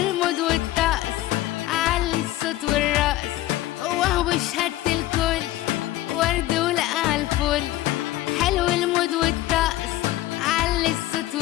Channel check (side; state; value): right; quieter; 15.8 dB